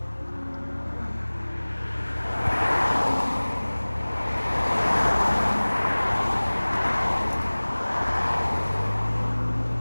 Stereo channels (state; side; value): inverted; both; correlation -1.00